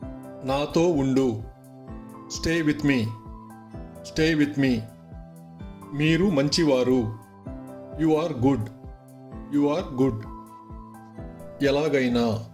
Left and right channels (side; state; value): both; identical; correlation 1.00